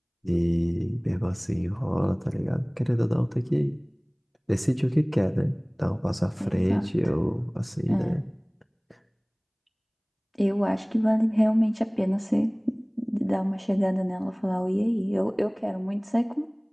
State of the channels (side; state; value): both; identical; correlation 1.00